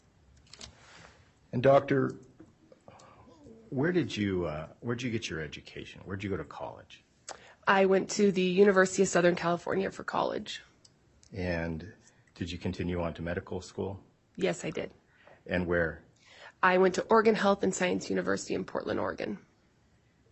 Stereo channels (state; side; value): identical; both; correlation 1.00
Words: And doctor, where'd you get your education? Where'd you go to college? I went to the University of Southern California for college. And did you continue on to medical school? Yes, I did. And where? I went to Oregon Health and Science University in Portland, Oregon.